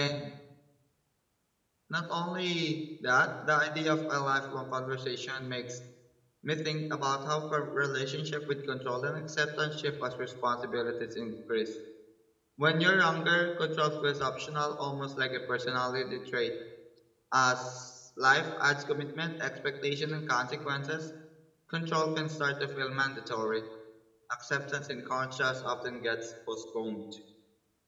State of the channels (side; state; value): both; identical; correlation 1.00